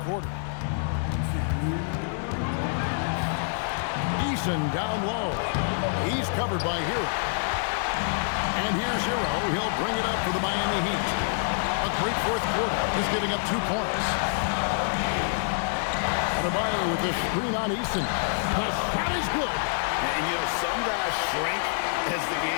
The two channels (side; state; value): right; silent; 60 dB below the other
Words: quarter. Eason down low. He's covered by Hero. And here's Hero. He'll bring it up for the Miami Heat. A great fourth quarter. He's giving up 2 points. Adebayo with the screen on Eason. The shot is good. And, you know, some guys shrink as the